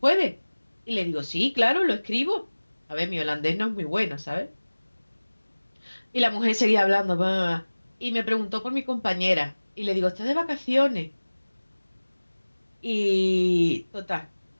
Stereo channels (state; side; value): inverted; both; correlation -1.00